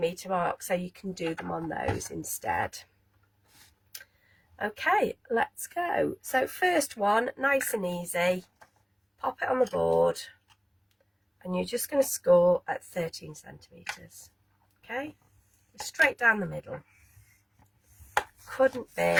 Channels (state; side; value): identical; both; correlation 1.00